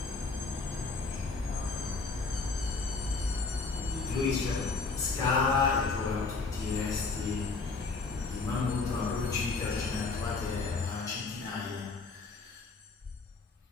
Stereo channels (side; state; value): right; quieter; 4.1 dB